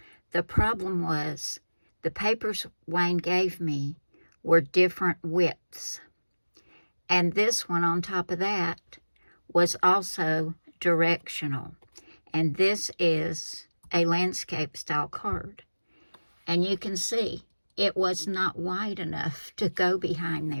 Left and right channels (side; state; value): both; inverted; correlation -1.00